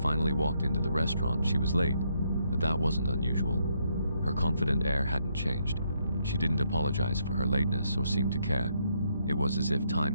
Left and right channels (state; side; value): inverted; both; correlation -0.75